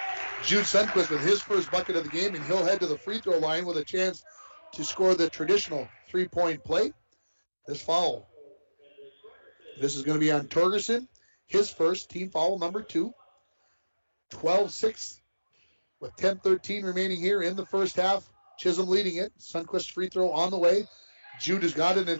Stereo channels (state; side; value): inverted; both; correlation -1.00